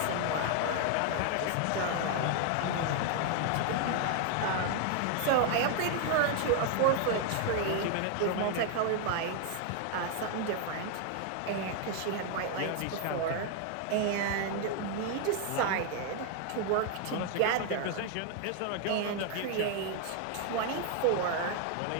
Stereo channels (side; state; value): both; different; correlation 0.00